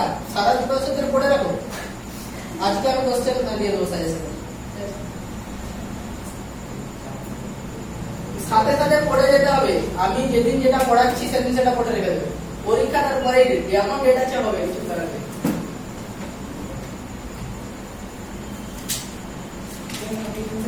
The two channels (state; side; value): identical; both; correlation 1.00